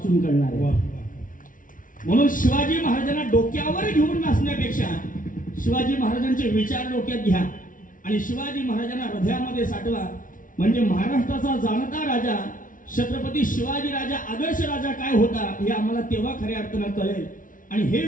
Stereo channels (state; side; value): late; right; 0.38 ms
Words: करणार. म्हणून शिवाजी महाराजांना डोक्यावर घेऊन नाचण्यापेक्षा शिवाजी महाराजांचे विचार डोक्यात घ्या आणि शिवाजी महाराजांना हृदयामध्ये साठवा. म्हणजे महाराष्ट्राचा जाणता राजा छत्रपती शिवाजी राजा आदर्श राजा काय होता हे आम्हाला तेव्हा खऱ्या अर्थानं कळेल. आणि हे